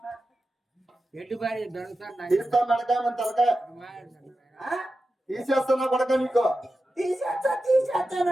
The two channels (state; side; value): normal; both; correlation 0.92